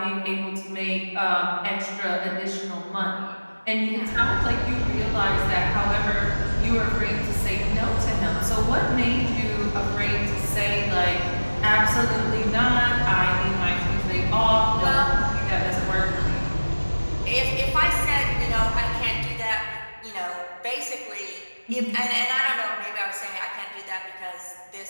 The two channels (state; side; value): inverted; both; correlation -1.00